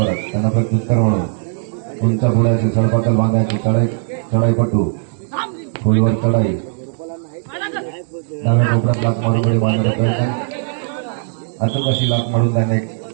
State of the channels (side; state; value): left; silent; digital silence